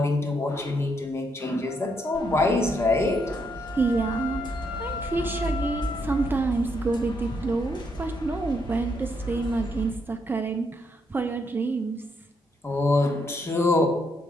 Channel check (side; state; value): both; normal; correlation 0.76